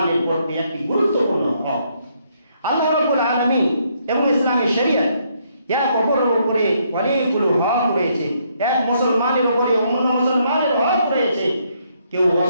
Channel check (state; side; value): inverted; both; correlation -0.72